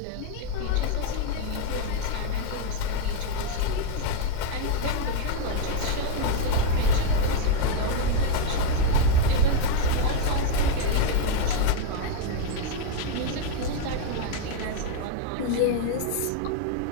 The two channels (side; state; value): both; different; correlation 0.01